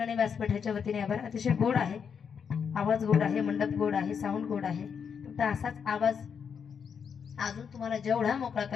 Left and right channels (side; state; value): right; quieter; 6.8 dB